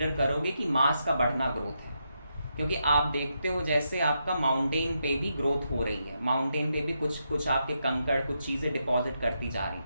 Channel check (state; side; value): inverted; both; correlation -0.82